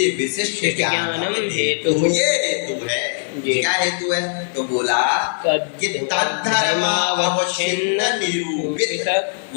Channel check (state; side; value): silent; right; digital silence